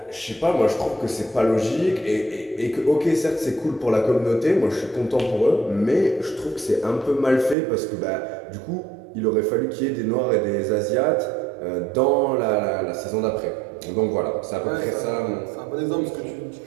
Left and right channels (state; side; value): drops out; left; at 7.6 s